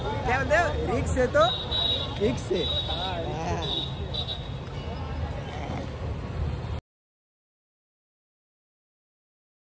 काय म्हणते, रिक्स येतो. रिक्स आहे.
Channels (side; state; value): both; identical; correlation 1.00